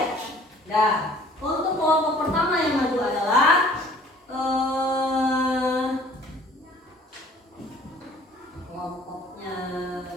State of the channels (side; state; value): both; normal; correlation 0.53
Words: Nah, untuk kelompok pertama yang maju adalah kelompoknya